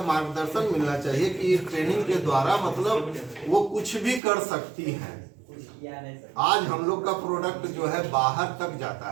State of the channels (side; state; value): left; drops out; at 4.2 s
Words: मार्गदर्शन मिलना चाहिए कि ट्रेनिंग के द्वारा मतलब वो कुछ भी कर सकती हैं। आज हम लोग का प्रोडक्ट जो है बाहर तक जाता